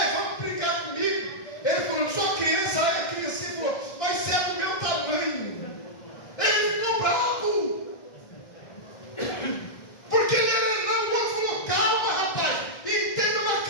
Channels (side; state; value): right; late; 2.0 ms